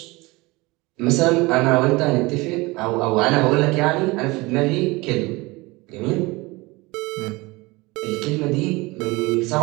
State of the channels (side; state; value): left; quieter; 23.2 dB